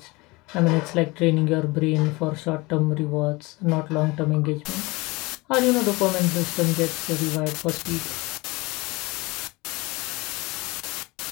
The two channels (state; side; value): quieter; right; 23.7 dB